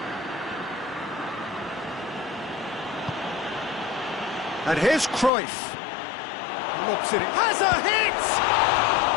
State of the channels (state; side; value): drops out; right; at 5.3 s